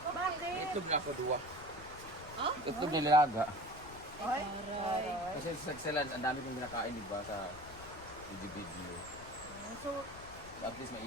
Bakit? Itlog na ako duwa. Itlog nilaga. Ay, Kasi sa Excellence, ang dami kong kinakain, di ba, sa video. so, At least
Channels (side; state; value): left; noise; rumble, 16 dB below the sound